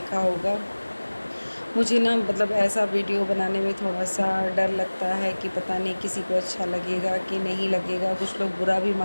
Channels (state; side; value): inverted; both; correlation -1.00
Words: होगा। मुझे ना मतलब ऐसा वीडियो बनाने में थोड़ा सा डर लगता है कि पता नहीं किसी को अच्छा लगेगा कि नहीं लगेगा। कुछ लोग बुरा भी